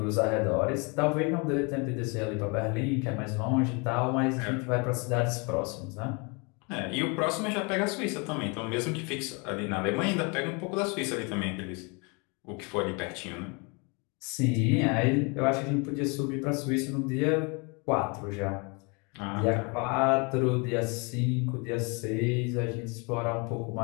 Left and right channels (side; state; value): right; quieter; 31.6 dB